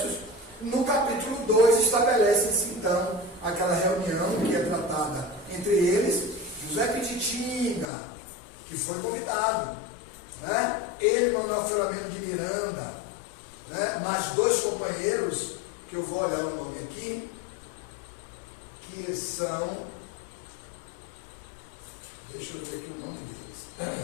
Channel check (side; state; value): right; drops out; at 7.9 s